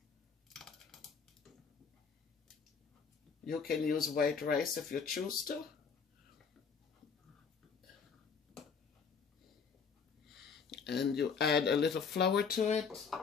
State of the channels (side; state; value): right; quieter; 5.9 dB